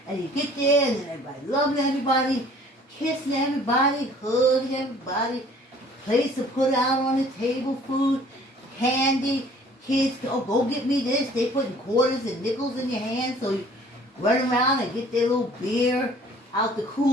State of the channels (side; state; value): both; normal; correlation 0.53